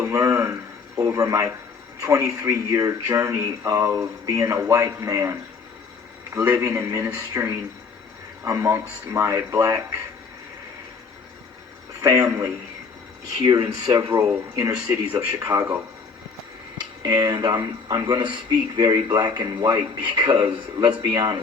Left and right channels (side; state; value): right; quieter; 5.0 dB